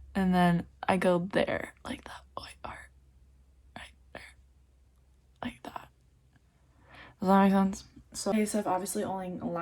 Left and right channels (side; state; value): both; identical; correlation 1.00